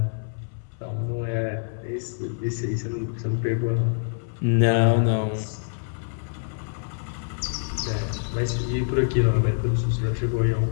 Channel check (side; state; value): right; silent; 61 dB below the other